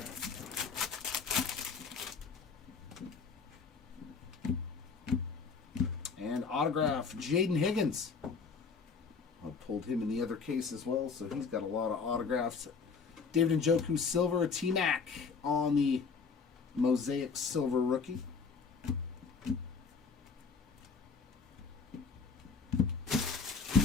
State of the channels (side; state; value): right; quieter; 5.2 dB